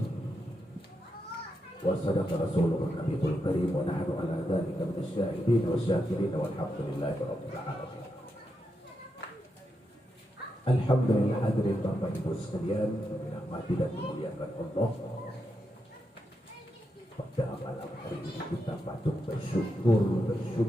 وصدق رسوله النبي الكريم ونحن على ذلك من الشاهدين والشاكرين والحمد لله رب العالمين. Alhamdulillah, hadirin Bapak Ibu sekalian, dirahmati dan dimuliakan Allah. Pada malam hari ini kita patut bersyukur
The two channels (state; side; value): normal; both; correlation 0.85